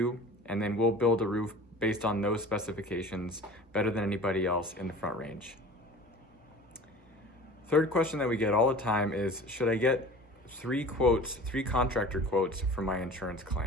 and then we'll build a roof based on those specifications better than anybody else in the Front Range. Third question that we get all the time is, should I get 3 contractor quotes for my insurance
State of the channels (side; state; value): both; normal; correlation 0.41